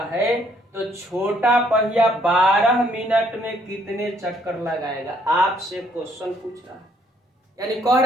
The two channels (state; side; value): normal; both; correlation 0.66